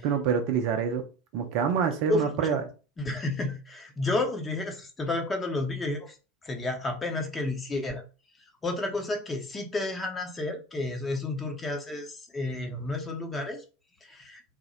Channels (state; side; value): normal; both; correlation 0.38